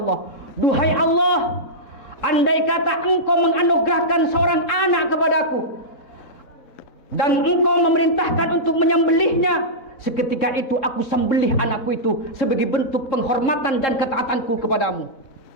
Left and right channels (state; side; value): late; right; 4.0 ms